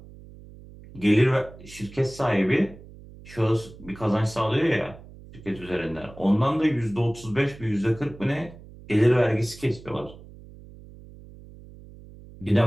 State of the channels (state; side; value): noise; right; hum, 19 dB below the sound